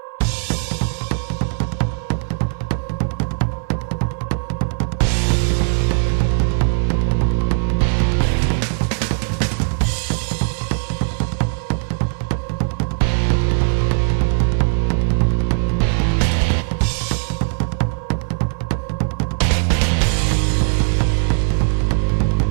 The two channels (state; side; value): silent; left; 59 dB below the other